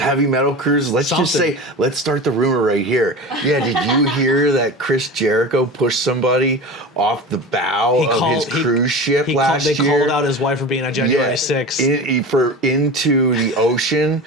metal cruises. Let's just Something. say, let's start the rumor right here. Yeah, did you hear that Chris Jericho pushed somebody off the bow of his cruise ship last They year? called out his wife for being on January 6th. Into the ocean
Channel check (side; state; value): both; normal; correlation 0.31